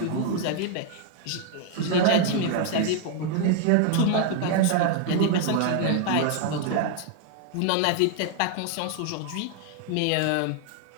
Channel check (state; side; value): different; both; correlation 0.00